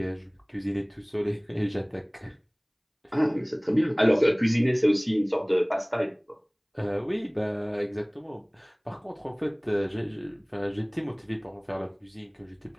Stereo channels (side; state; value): both; identical; correlation 1.00